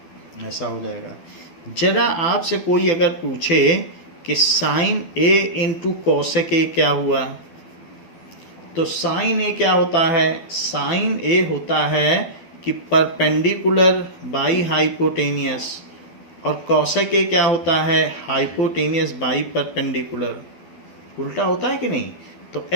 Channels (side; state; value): right; late; 12 ms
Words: ऐसा हो जाएगा. जरा आपसे कोई अगर पूछे कि sine A into cosec A क्या हुआ, तो साइन ए क्या होता है? साइन ए होता है कि परपेंडिकुलर बाई हाइपोटेनियस, और कॉसेक ए क्या होता है? Hypotenuse by perpendicular. उल्टा होता है कि नहीं? तो